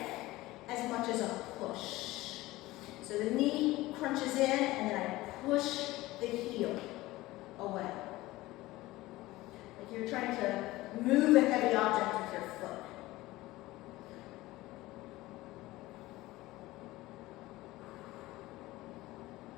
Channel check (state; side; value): quieter; right; 18.4 dB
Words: as much as a push. So the knee crunches in and then I push the heel away. Like you're trying to move a heavy object with your foot.